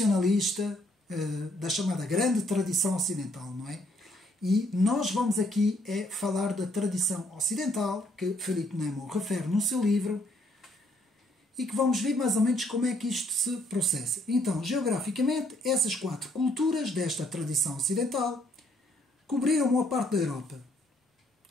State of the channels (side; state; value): both; normal; correlation 0.68